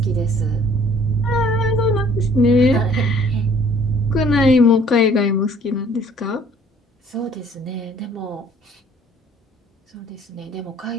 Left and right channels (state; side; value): normal; both; correlation 0.56